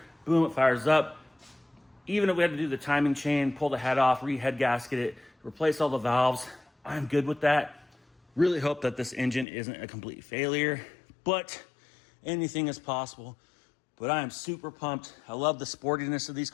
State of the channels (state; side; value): drops out; right; at 9.5 s